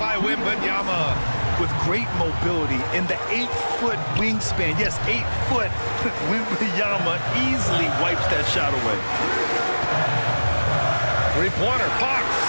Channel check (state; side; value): inverted; both; correlation -1.00